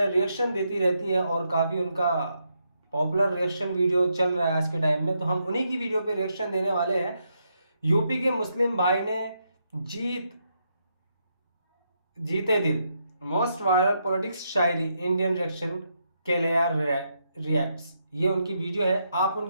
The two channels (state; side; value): inverted; both; correlation -0.80